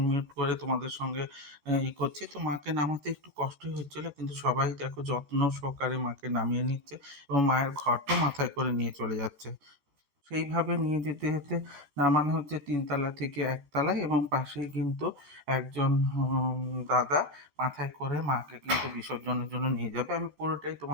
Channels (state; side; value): late; left; 13 ms